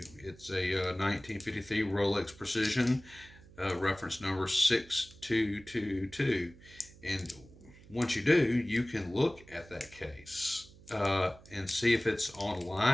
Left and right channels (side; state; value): right; noise; hum, 22 dB below the sound